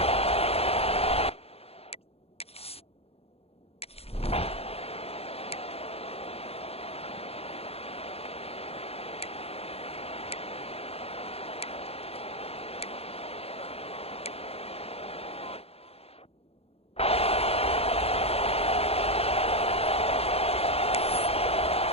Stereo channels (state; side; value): late; right; 0.29 ms